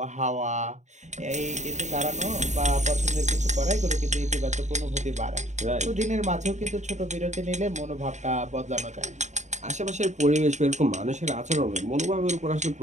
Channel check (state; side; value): late; left; 0.34 ms